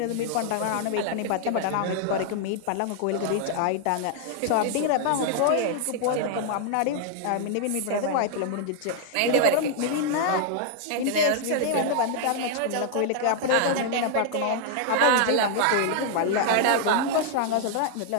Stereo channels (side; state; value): both; different; correlation 0.00